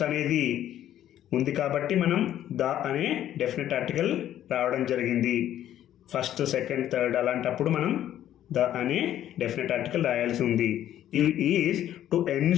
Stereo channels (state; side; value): quieter; right; 11.7 dB